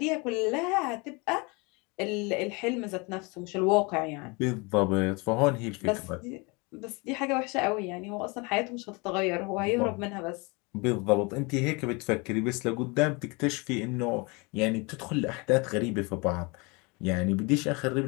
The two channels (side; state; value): right; quieter; 28.4 dB